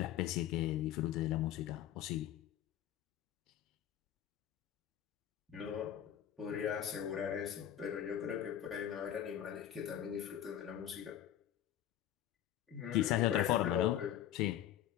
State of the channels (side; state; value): right; quieter; 11.1 dB